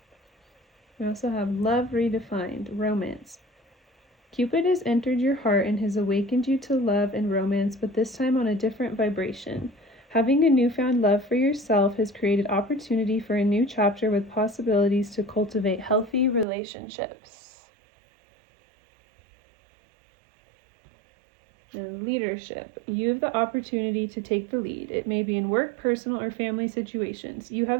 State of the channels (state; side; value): drops out; left; at 16.4 s